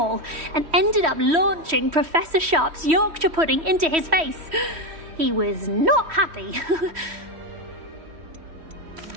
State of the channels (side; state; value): left; late; 3.1 ms